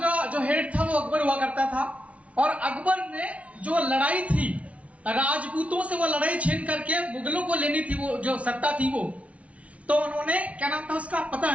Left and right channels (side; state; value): left; late; 0.065 ms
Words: जो हेड था वो अकबर हुआ करता था, और अकबर ने जो लड़ाई थी राजपूतों से, वो लड़ाई छीन करके मुगलों को लेनी थी, वो जो सत्ता थी वो। तो उन्होंने, क्या नाम था उसका पता